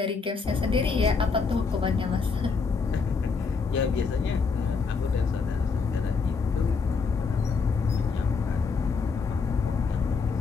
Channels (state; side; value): quieter; right; 5.0 dB